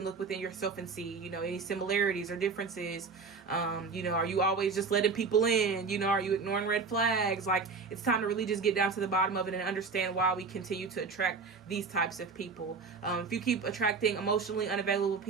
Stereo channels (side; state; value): left; quieter; 4.7 dB